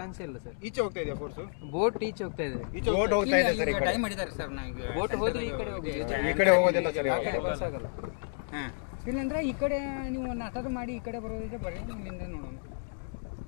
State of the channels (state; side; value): silent; right; digital silence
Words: ಇಲ್ಲ ಸರ್. ಈಚೆ ಹೋಗ್ತಾ ಇದೆಯಾ ಫೋರ್ಸು? ಬೋಟ್ ಈಚೆ ಹೋಗ್ತಾ ಇದೆ. ಬೋಟ್ ಹೋಗ್ತಾ ಇದೆ ಸರ್. ಈ ಕಡೆ ಡೈ ಮಾಡಿದ್ದಾರೆ ಸರ್. ನಾವು ಬೋಟ್ ಹೋದ್ರೆ ಈ ಕಡೆ ಹೋಗ್ತೀವಿ. ಈ ಕಡೆ ಹೋಗೋದಿಲ್ಲ ಸರ್. ಇವಾಗ ಆಗಲ್ಲ. ಹಾಂ, ಇಲ್ಲಂದ್ರೆ ಈ ಕಡೆ ನೀವು ನಾಟಕ ಮಾಡಿ ಈ ಕಡೆ ಬರೋದಿದ್ರೆ ಬರೀ ಇಲ್ಲಿಂದ ನೋಡೋಣ.